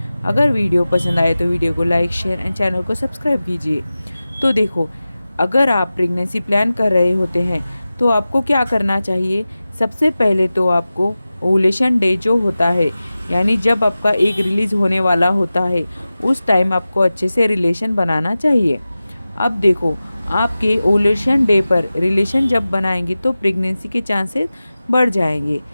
अगर वीडियो पसंद आए तो वीडियो को लाइक शेयर एंड चैनल को सब्सक्राइब कीजिए। तो देखो, अगर आप प्रेगनेंसी प्लान कर रहे होते हैं तो आपको क्या करना चाहिए। सबसे पहले तो आपको ओवुलेशन डे जो होता है, यानी जब आपका एग रिलीज़ होने वाला होता है, उस टाइम आपको अच्छे से रिलेशन बनाना चाहिए। अब देखो, आपके ओवुलेशन डे पर रिलेशन जब बनाएंगे तो प्रेगनेंसी के चांसेस बढ़ जाएंगे।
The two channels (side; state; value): both; inverted; correlation -0.96